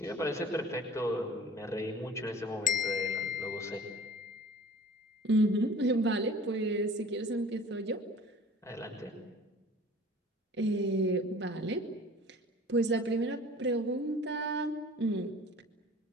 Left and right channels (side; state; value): both; normal; correlation 0.45